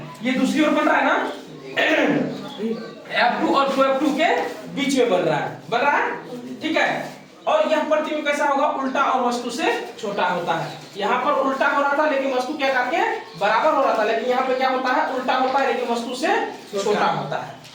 ये दूसरी ओर बन रहा है ना, F2 और 2F2 के बीच में बन रहा है, ठीक है। और यह प्रतिबिंब कैसा होगा? उल्टा और वस्तु से छोटा होता है। यहाँ पर उल्टा हो रहा था लेकिन वस्तु क्या करके बराबर हो रहा था, लेकिन यहाँ पे क्या होता है? उल्टा होता है लेकिन वस्तु से छोटा होता है।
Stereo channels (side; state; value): both; identical; correlation 1.00